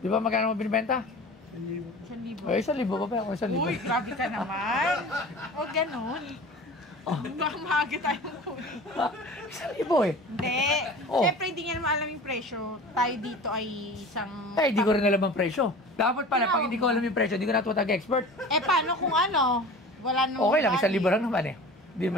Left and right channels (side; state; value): both; normal; correlation 0.38